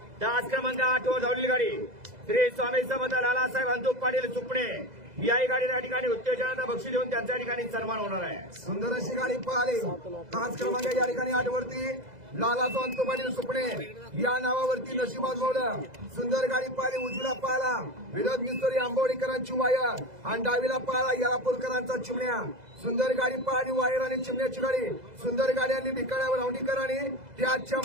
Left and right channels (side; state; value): left; late; 2.0 ms